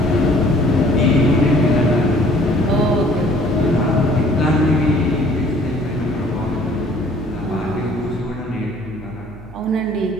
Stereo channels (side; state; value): right; noise; hum, 18 dB below the sound